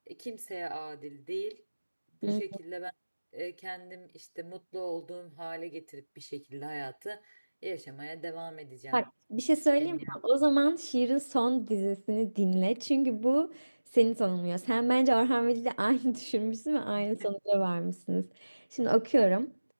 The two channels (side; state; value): both; inverted; correlation -1.00